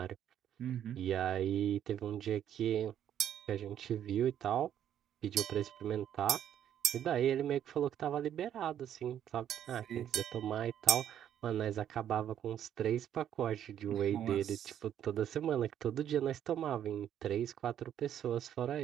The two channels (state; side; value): quieter; left; 10.2 dB